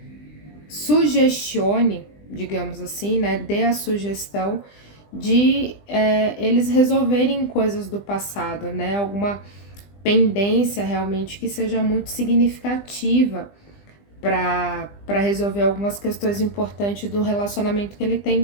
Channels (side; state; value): right; late; 20 ms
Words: sugestione, digamos assim, né? Dê a sugestão de eles resolverem coisas do passado, né? Alguma pendência realmente que seja muito significativa para resolver algumas questões importantes do relacionamento que ele